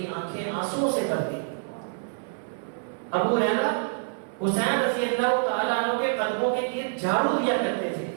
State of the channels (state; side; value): silent; left; 60 dB below the other